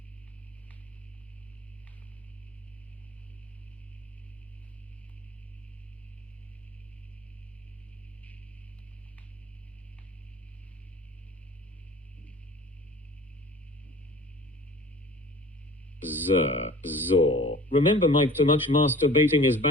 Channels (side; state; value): both; normal; correlation 0.44